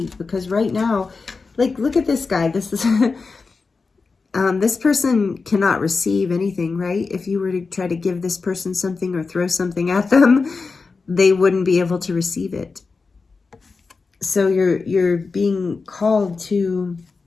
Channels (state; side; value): quieter; right; 4.4 dB